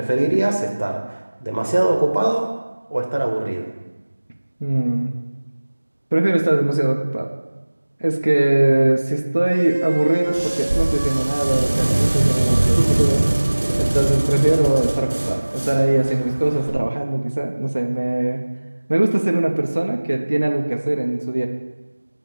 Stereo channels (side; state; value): both; inverted; correlation -1.00